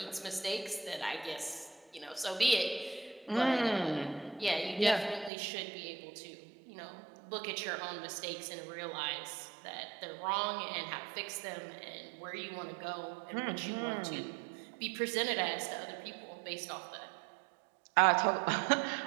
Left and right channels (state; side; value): drops out; left; at 5.3 s